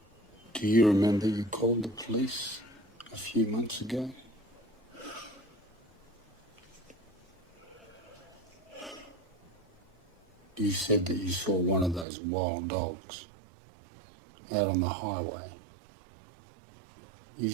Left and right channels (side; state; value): left; drops out; at 12.1 s